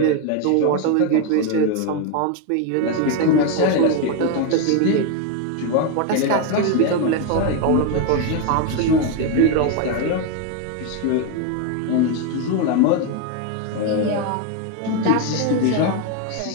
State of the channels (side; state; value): both; different; correlation 0.01